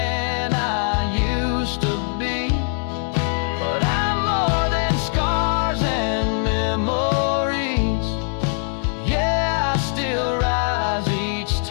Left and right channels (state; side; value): silent; right; 64 dB below the other